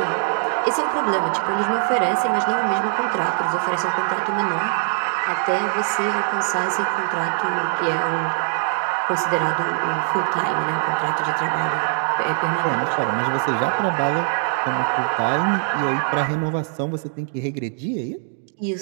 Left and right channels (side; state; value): left; silent; digital silence